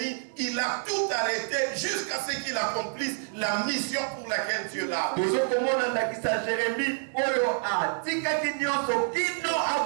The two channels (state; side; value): silent; left; 59 dB below the other